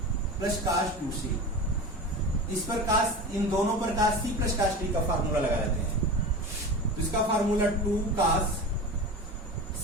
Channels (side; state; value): both; normal; correlation 0.29